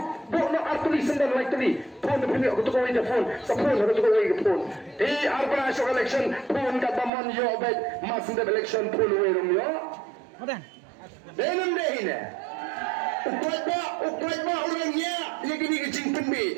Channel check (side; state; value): left; drops out; at 7.1 s